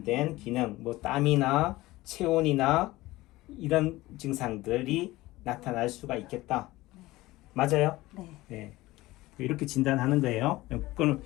기능 뭐 땀이나 체온이나 이런 증상들이 나타날 수가 있겠다. 맞아요? 네. 이렇게 진단하는 거예요. 그럼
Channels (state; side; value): quieter; right; 18.6 dB